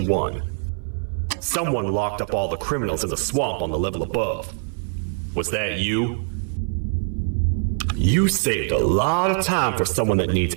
1. Someone locked up all the criminals in the swamp on the level above. Was that you? You saved a lot of time for someone that needs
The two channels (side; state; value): left; silent; 63 dB below the other